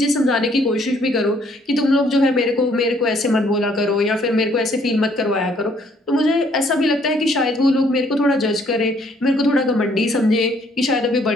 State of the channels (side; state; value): both; normal; correlation 0.64